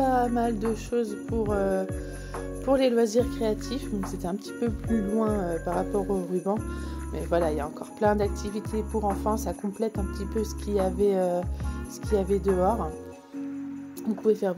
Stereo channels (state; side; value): identical; both; correlation 1.00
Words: mal de choses pour les loisirs créatifs. Donc c'était un petit peu plus loin par rapport au ruban. Mais voilà, il y a encore plein d'activités pour enfants. Ça complète un petit peu ce qu'il y avait dehors. Vous pouvez faire